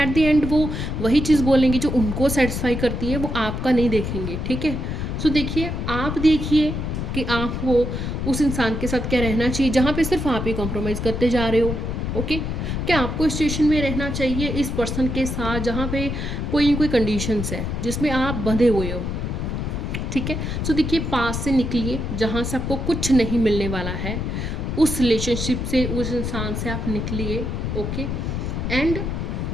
द एंड वो वही चीज़ बोलेंगे जो उनको सेटिस्फाई करती है, वो आपका नहीं देखेंगे, ठीक है। सो देखिए, आप देखिए कि आपको उस इंसान के साथ क्या रहना चाहिए जहाँ पे सिर्फ आप ही कॉम्प्रोमाइज़ करते जा रहे हो। ओके, क्या आपको इस सिचुएशन में रहना चाहिए इस पर्सन के साथ जहाँ पे कोई न कोई कंडीशंस है जिसमें आप बंधे हुए हो, ठीक है। सो देखिए, पास से निकलिए, जहाँ से आपको कुछ नहीं मिलने वाला है, उस रिलेशनशिप से, उस इंसान से आप निकलिए। ओके, एंड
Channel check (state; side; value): noise; left; rumble, 3 dB below the sound